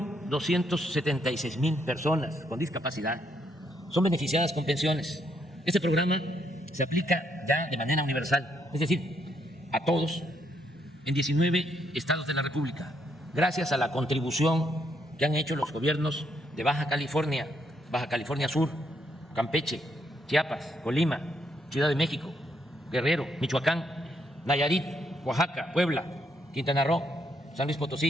personas con discapacidad son beneficiadas con pensiones. Este programa se aplica ya de manera universal, es decir, a todos en 19 estados de la República, gracias a la contribución que han hecho los gobiernos de Baja California Sur, Campeche, Chiapas, Colima, Ciudad de México, Guerrero, Michoacán, Nayarit, Oaxaca, Puebla, Quintana Roo, San Luis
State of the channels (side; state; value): both; normal; correlation 0.75